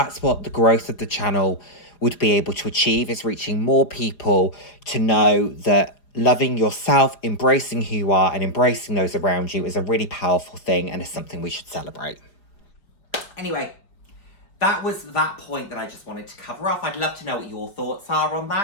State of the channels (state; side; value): late; right; 4.9 ms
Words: what the growth of the channel would be able to achieve, is reaching more people to know that loving yourself, embracing who you are, and embracing those around you is a really powerful thing and is something we should celebrate. Anyway, that was that point that I just wanted to cover off. I'd love to know what your thoughts are on